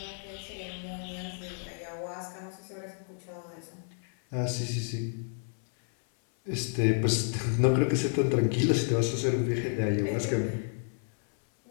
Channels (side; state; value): right; silent; 57 dB below the other